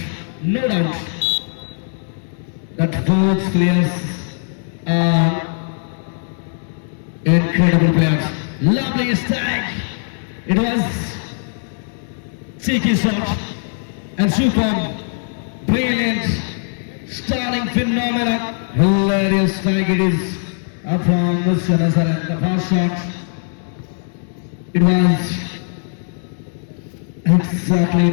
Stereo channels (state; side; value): silent; right; digital silence